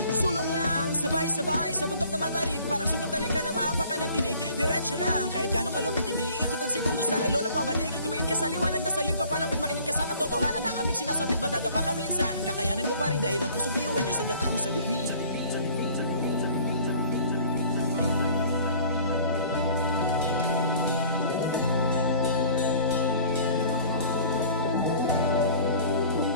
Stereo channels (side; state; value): both; inverted; correlation -0.51